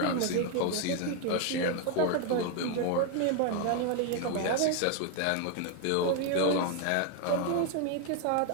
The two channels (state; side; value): different; both; correlation 0.01